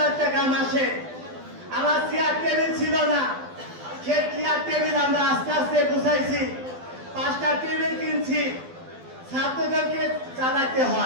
টাকা মাসে। আমার চেয়ার টেবিল ছিল না, সে চেয়ার টেবিল আমরা আস্তে আস্তে গুছাইছি। 5টা টেবিল কিনছি, ছাত্রদেরকে চালাতে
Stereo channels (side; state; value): left; late; 12 ms